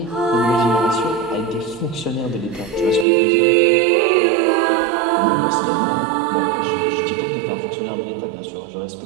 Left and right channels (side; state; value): left; drops out; at 3.1 s